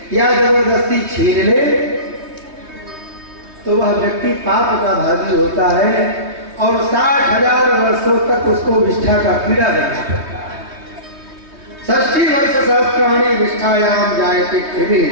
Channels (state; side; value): late; left; 3.2 ms